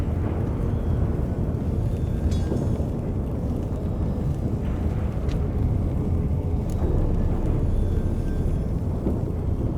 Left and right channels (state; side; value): identical; both; correlation 1.00